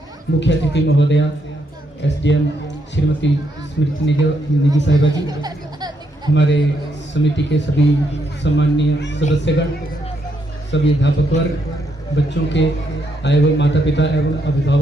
मुख्य अतिथि महोदया एसडीएम श्रीमती स्मृति निजी साहिबा जी, हमारे समिति के सभी सम्माननीय सदस्यगण, सभी अध्यापक वर्ग, बच्चों के आए हुए माता पिता एवं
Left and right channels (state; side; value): normal; both; correlation 0.77